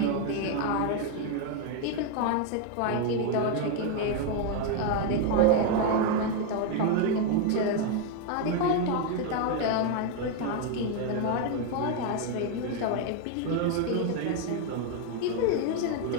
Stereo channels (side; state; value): both; different; correlation 0.01